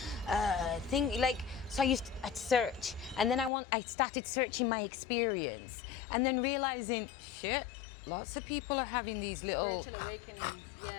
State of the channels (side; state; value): right; drops out; at 3.5 s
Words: So I'd search. And then I started searching my experience. And then realizing, shit, lots of people are having these little Spiritual awakenings,